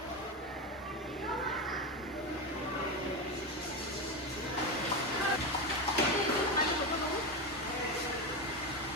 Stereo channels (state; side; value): normal; both; correlation 0.15